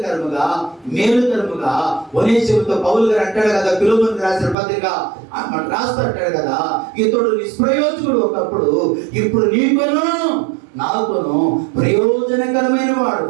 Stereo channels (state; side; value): drops out; left; at 4.5 s